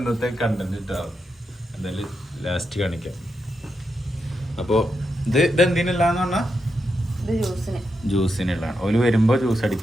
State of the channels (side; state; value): both; normal; correlation 0.85